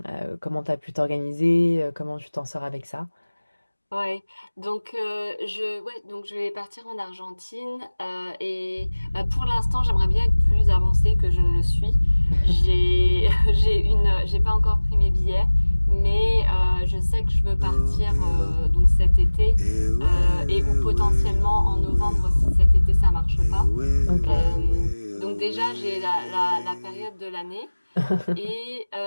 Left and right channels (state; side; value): inverted; both; correlation -1.00